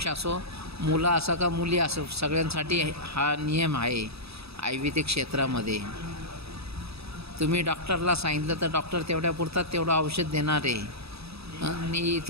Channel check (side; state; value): left; late; 0.78 ms